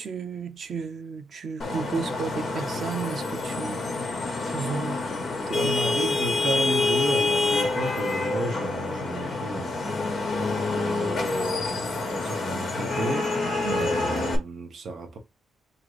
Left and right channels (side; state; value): both; normal; correlation 0.81